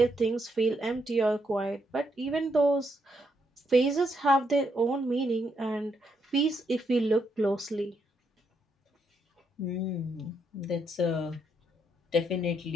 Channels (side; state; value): both; normal; correlation 0.77